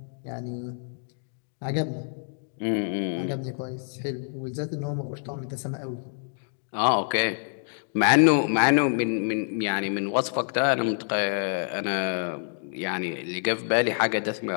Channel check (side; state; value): right; silent; digital silence